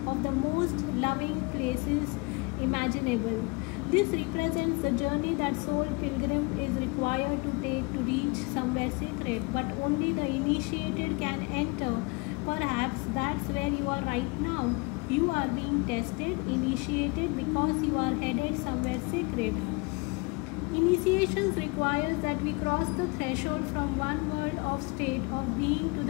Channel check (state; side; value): quieter; right; 27.9 dB